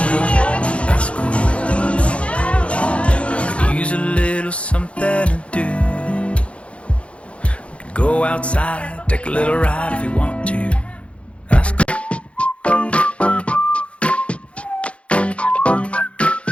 that's cool. I could use a little something to do. We could go outside, take a little ride if you want to. That's cool.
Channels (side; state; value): right; late; 0.061 ms